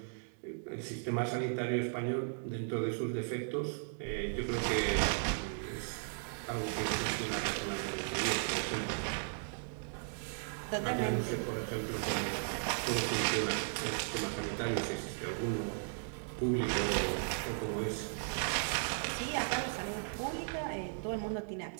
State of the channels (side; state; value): left; silent; digital silence